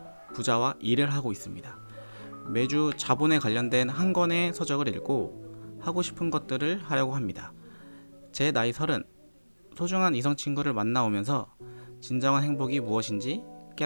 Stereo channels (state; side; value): inverted; both; correlation -1.00